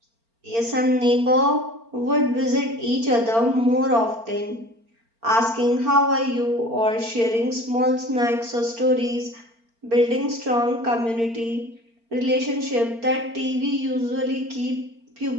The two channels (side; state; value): left; late; 4.4 ms